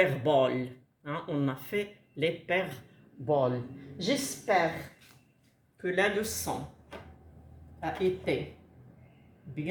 Hein, on a fait l'hyperbole. J'espère que la leçon a été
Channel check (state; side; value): identical; both; correlation 1.00